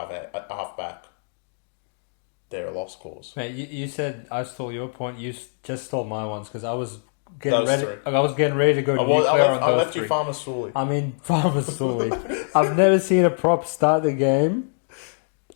They're a lost cause. Mate, you said I stole your point. You just stole my ones because I was getting ready. I was getting ready to go nuclear on those I left three. you Farmer Sully. I mean, Farmer Sully. I've never seen a prop start the game,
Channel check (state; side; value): silent; right; digital silence